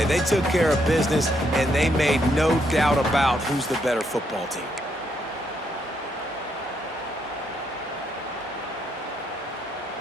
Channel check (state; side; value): normal; both; correlation 0.76